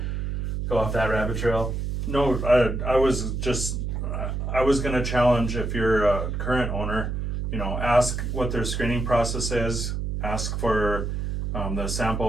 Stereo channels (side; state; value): right; noise; hum, 2 dB below the sound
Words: go off that rabbit trail? No, I was going to challenge if you're a current owner, you know, ask what their screening process is, ask for the